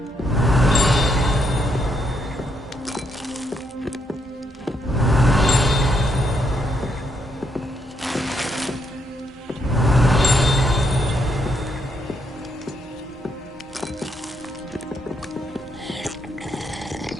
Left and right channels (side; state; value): both; normal; correlation 0.76